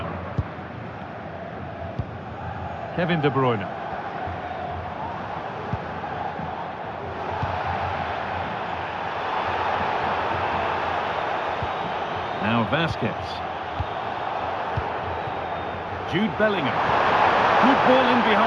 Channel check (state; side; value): identical; both; correlation 1.00